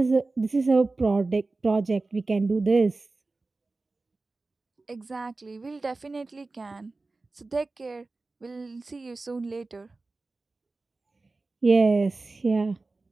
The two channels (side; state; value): left; quieter; 3.5 dB